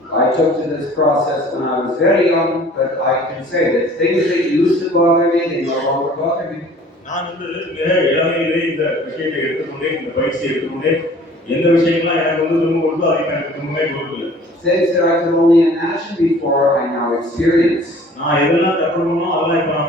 I took to this process when I was very young, but I can say that things that used to bother me, they no longer bother me. நான் மிக இளமையிலே இந்த விஷயத்தை எடுத்துக்கொண்டே இந்த பயிற்சியை எடுத்துக்கொண்டே எந்த விஷயங்கள்லாம் எனக்கு திரும்ப கொடுத்தோ அதை எனக்கு திரும்பவே கொடுக்கல. Things that I could only imagine before, I now experience. நான் எதெல்லாம் தப்புறோமோ அதெல்லாம் இப்ப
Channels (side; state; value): both; normal; correlation 0.50